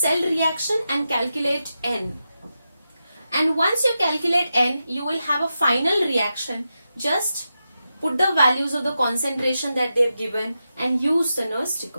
reaction and calculate N. And once you calculate N, you will have a final reaction. Just put the values of the concentration that they have given and use the Nernst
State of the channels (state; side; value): inverted; both; correlation -0.89